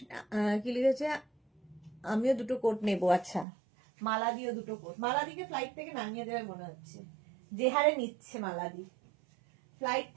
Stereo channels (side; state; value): left; drops out; at 3.5 s